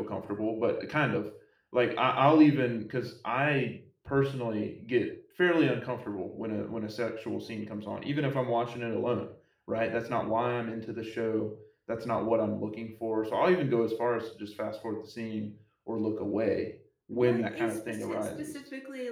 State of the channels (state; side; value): identical; both; correlation 1.00